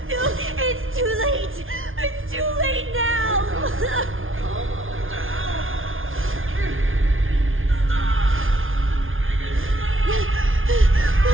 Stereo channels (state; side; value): late; left; 0.59 ms